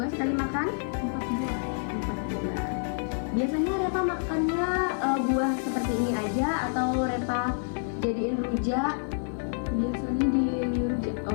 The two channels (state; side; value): silent; right; 55 dB below the other